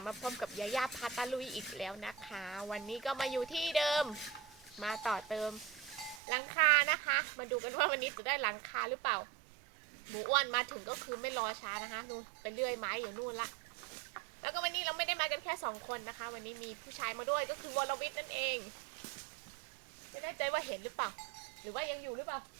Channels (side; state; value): left; drops out; at 6.2 s